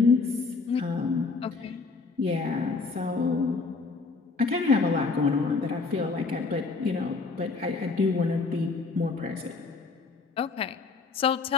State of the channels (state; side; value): quieter; right; 4.2 dB